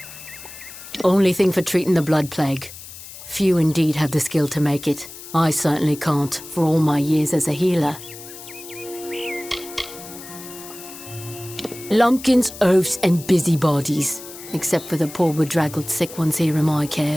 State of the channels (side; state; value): left; noise; hiss, 15 dB below the sound